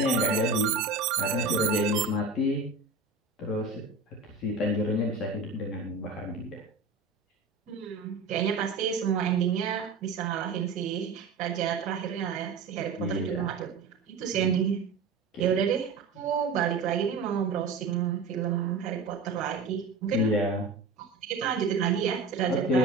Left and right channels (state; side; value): quieter; left; 3.9 dB